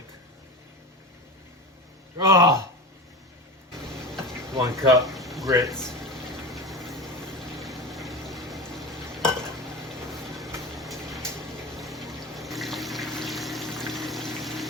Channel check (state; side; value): normal; both; correlation 0.27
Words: Oh, 1 cup grits.